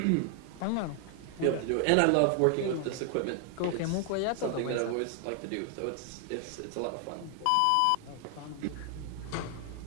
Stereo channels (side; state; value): both; different; correlation 0.00